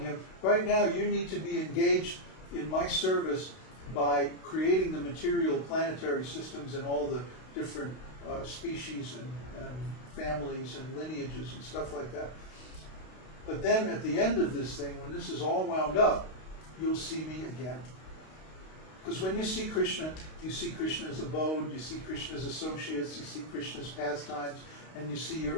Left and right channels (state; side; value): late; right; 32 ms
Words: right now you need to be engaged in my service by creating the material planetary systems and all the different species and families and lineages and stuff like that. But then at the end of this thing, when this is all wound up, you'll see me again. Because when you see Kṛṣṇa, you see Kṛṣṇa's abode, you see Kṛṣṇa's associates, you see Kṛṣṇa's pastimes, and you see